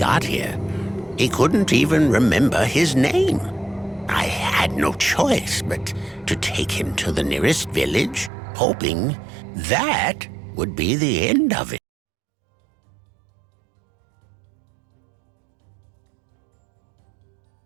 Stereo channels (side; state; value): left; drops out; at 8.3 s